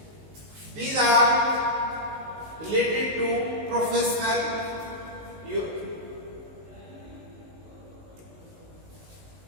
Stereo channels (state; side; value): late; left; 19 ms